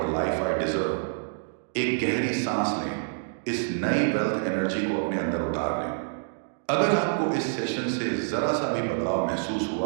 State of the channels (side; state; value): left; silent; digital silence